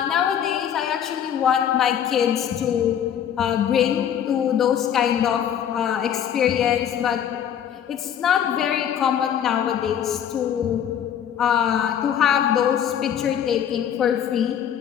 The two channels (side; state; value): right; quieter; 9.2 dB